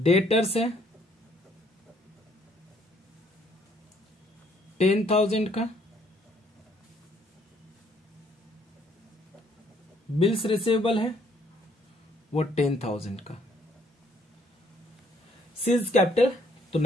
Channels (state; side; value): normal; both; correlation 0.65